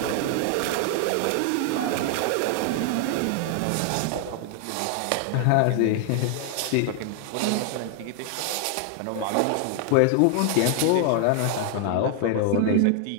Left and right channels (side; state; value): both; different; correlation 0.00